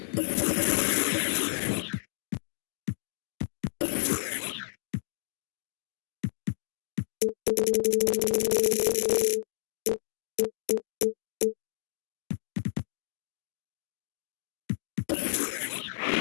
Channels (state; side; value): silent; right; digital silence